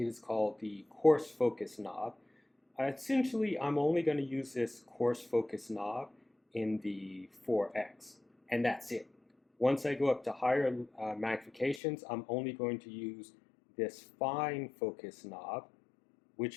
is called the coarse focus knob. Essentially, I'm only going to use this coarse focus knob in the 4x, and that's it. Once I go up to higher magnifications, I'm only going to use this fine focus knob,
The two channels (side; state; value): right; drops out; at 11.8 s